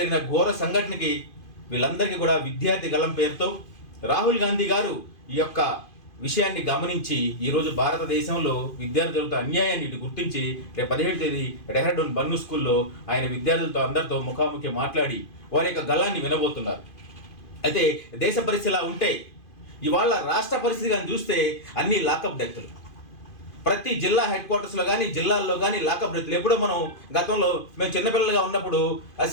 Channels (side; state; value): right; late; 2.5 ms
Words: ఘోర సంఘటనకి వీళ్ళందరికీ కూడా విద్యార్థి గళం పేరుతో రాహుల్ గాంధీ గారు ఈ యొక్క విషయాన్ని గమనించి ఈరోజు భారతదేశంలో విద్యార్థులతో అన్యాయాన్ని గుర్తించి రేపు 17వ తేదీ డెహ్రాడూన్ బన్ను స్కూల్లో ఆయన విద్యార్థులతో అందరితో ముఖాముఖి మాట్లాడి వారి యొక్క గళాన్ని వినబోతున్నారు. అయితే దేశ పరిస్థితి ఇలా ఉంటే ఇవాళ రాష్ట్ర పరిస్థితి కానీ చూస్తే అన్ని లాకప్ డెత్లు, ప్రతి జిల్లా హెడ్ క్వార్టర్స్లో కానీ జిల్లాల్లో కానీ లాకప్ డెత్లు. ఎప్పుడో మనం గతంలో మేము చిన్నపిల్లలుగా ఉన్నప్పుడు ఆ